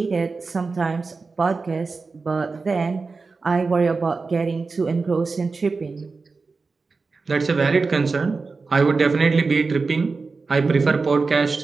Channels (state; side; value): quieter; left; 4.2 dB